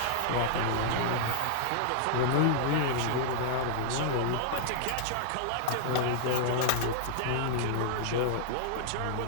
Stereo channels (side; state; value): both; different; correlation -0.01